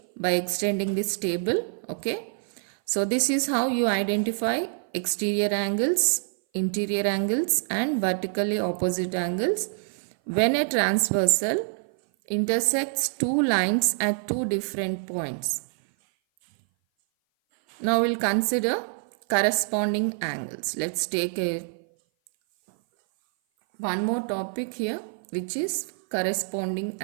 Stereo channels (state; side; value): silent; left; 57 dB below the other